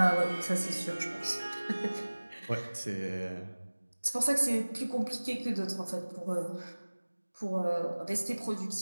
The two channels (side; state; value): both; inverted; correlation -1.00